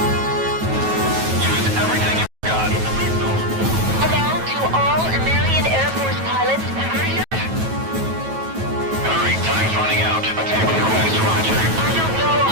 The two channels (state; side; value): late; left; 9.2 ms